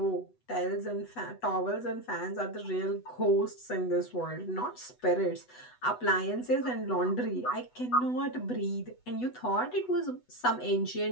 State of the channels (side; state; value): right; late; 8.0 ms